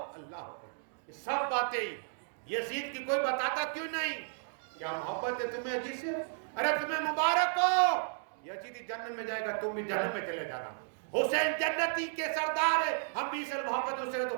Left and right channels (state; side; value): silent; left; digital silence